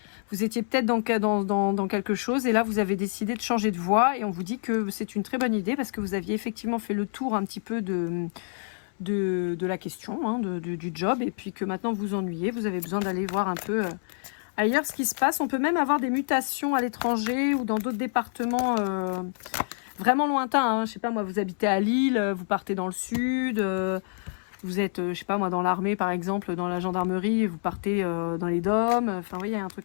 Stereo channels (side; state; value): right; silent; 60 dB below the other